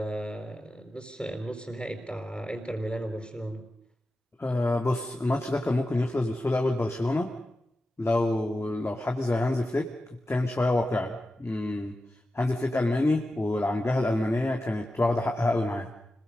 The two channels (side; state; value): both; normal; correlation 0.92